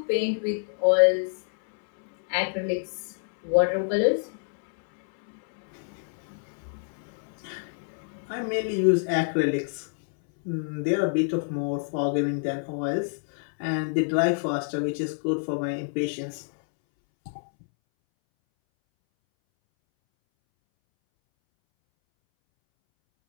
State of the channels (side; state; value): right; silent; 60 dB below the other